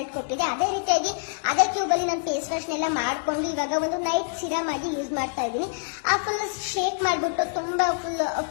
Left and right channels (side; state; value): right; silent; digital silence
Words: ಕೊಟ್ಟಿದೆ. ಅದೇ ರೀತಿಯಾಗಿ ಅದೇ ಕ್ಯೂಬ್ ಅಲ್ಲಿ ನಾನು ಫೇಸ್ ವಾಶ್ ನೆಲ್ಲ ಮಾಡ್ಕೊಂಡು ಇವಾಗ ಒಂದು ನೈಟ್ ಸಿರಮ್ ಆಗಿ ಯೂಸ್ ಮಾಡ್ತಾ ಇದ್ದೀನಿ. ಆ ಫುಲ್ ಶೇಕ್ ಮಾಡ್ಬಿಟ್ಟು ತುಂಬಾ ಫುಲ್